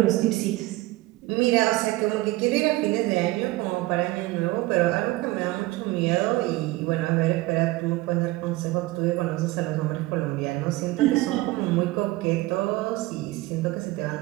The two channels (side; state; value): left; quieter; 19.3 dB